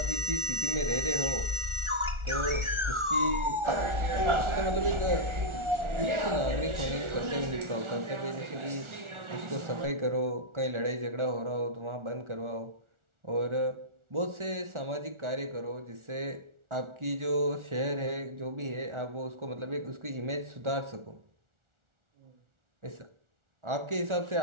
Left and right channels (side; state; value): left; late; 1.4 ms